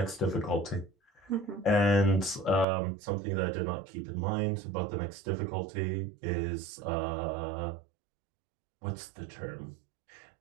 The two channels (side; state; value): left; drops out; at 2.7 s